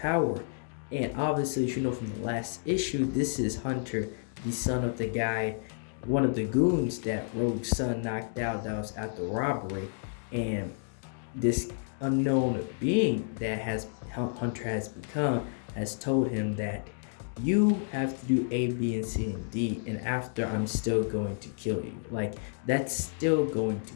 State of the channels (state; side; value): silent; right; digital silence